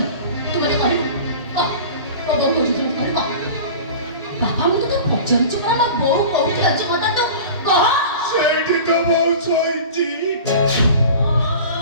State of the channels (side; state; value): both; inverted; correlation -0.37